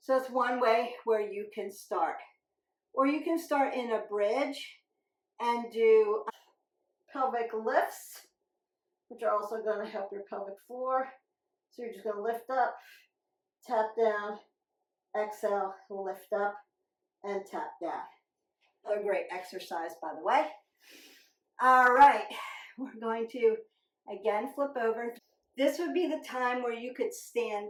So it's one way where you can start. Or you can start in a bridge and do pelvic lifts, which are also going to help your pelvic floor. So you're just going to lift up, tap down, exhale, lift up, and tap down. A great exercise, by the way. All right, we're going to again flip over. This would be the time where you could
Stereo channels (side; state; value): both; identical; correlation 1.00